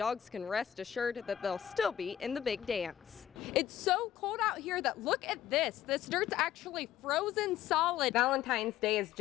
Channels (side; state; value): right; quieter; 11.2 dB